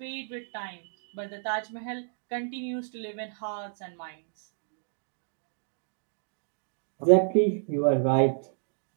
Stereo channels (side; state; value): left; silent; digital silence